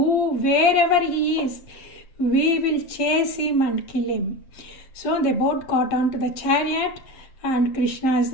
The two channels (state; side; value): late; right; 7.6 ms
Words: wherever he is, we will chase him and kill him. So they both got onto the chariot, and Krishna is